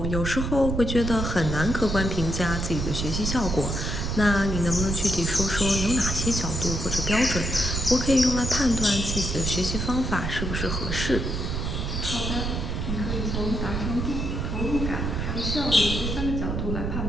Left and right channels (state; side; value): noise; right; rumble, 2 dB below the sound